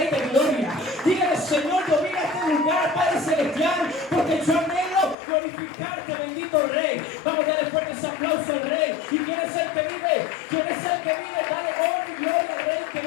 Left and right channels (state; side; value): drops out; right; at 5.2 s